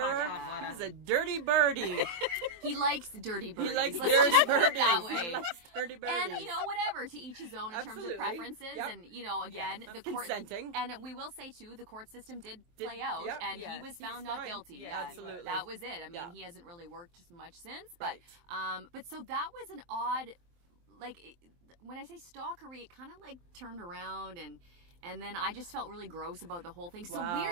He's a dirty birdie. He likes dirty birdies. He likes Let's dirty just put it birdies. that way. He likes dirty birdies. And, you know, whatever, to each his own in terms of preferences. Yep. And, you know, again, the court... Consenting. And we will say, too, the court system did play out, and he was found not guilty. Yeah, absolutely. That was it. I mean, he hasn't really worked much since, but so that was an odd, like, when I say stalkery, it kind of like turned around, and then I just felt really gross about the whole thing. So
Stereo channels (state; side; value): late; left; 23 ms